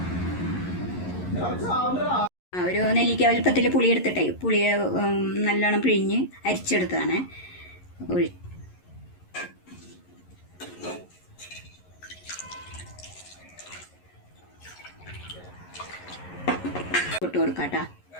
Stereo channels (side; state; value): right; late; 11 ms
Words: ഒരു നെല്ലിക്ക വലുപ്പത്തിൽ പുളി എടുത്തിട്ടേ പുളിയെ നല്ലോണം പിഴിഞ്ഞ് അരിച്ചെടുത്താണ്. ഇട്ട് കൊടുക്കാം കേട്ടോ,